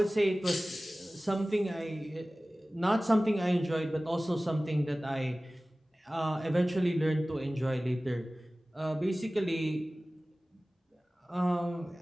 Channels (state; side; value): normal; both; correlation 0.97